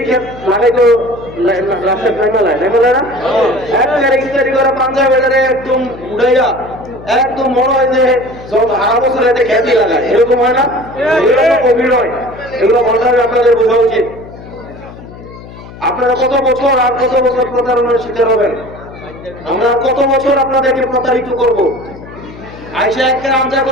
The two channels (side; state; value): left; noise; hum, 17 dB below the sound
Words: খেত লাগে তো রাস্তায় নেমেলায় না একবারে ইস্তারি করা পাঞ্জাবিটারে একদম উড়াইয়া একদম মনে হয় যে যত হারা বছর এতে খ্যাতি লাগায়, এরকম হয় না? এগুলো অভিনয়, এগুলো মনে আপনাদের বোঝা উচিত। আপনারা কত বছর আর কত বছর প্রতারণার শিকার হবেন? আমরা কত বছর আপনাদেরকে প্রতারিত করব? আইসা একটা আমজা